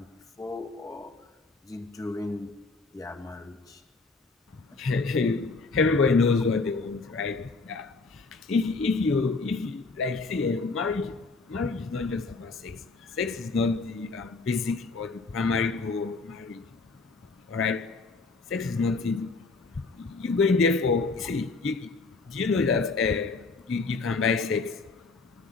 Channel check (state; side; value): quieter; right; 3.9 dB